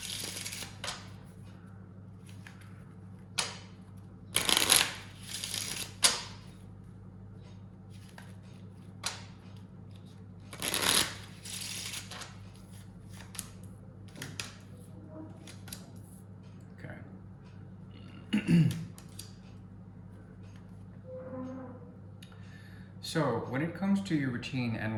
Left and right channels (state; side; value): identical; both; correlation 1.00